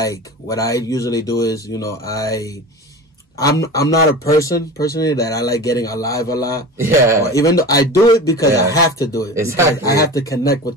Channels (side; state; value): both; normal; correlation 0.33